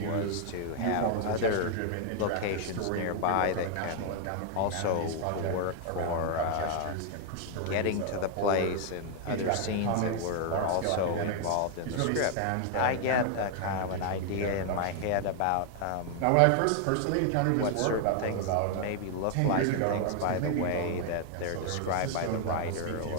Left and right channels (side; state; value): both; different; correlation 0.00